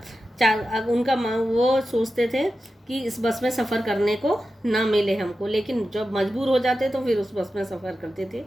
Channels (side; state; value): both; normal; correlation 0.92